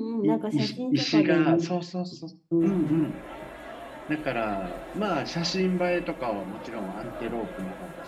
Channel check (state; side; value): identical; both; correlation 1.00